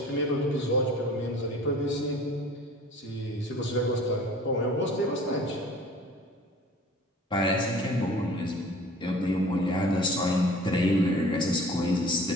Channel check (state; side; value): normal; both; correlation 0.46